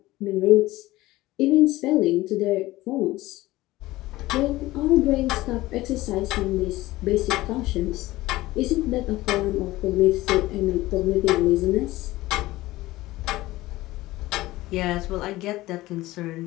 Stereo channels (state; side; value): quieter; right; 17.9 dB